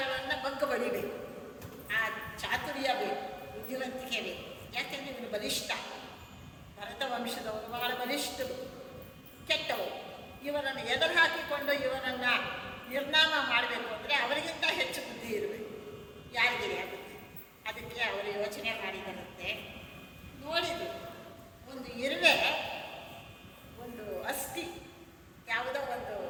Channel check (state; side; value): identical; both; correlation 1.00